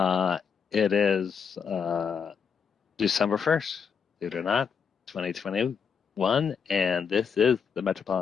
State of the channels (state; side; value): quieter; right; 6.5 dB